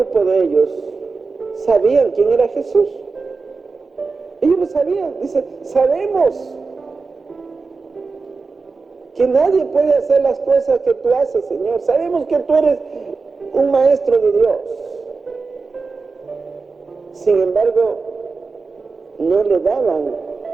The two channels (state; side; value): quieter; left; 4.3 dB